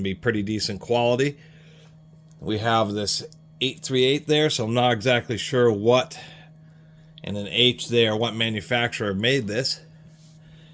be pretty decent quality. We have this 838 there, so I'm not exactly sure what, and an H there, what manufacturer made this.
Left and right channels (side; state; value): both; identical; correlation 1.00